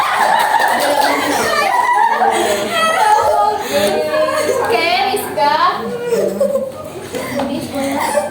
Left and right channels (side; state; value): both; identical; correlation 1.00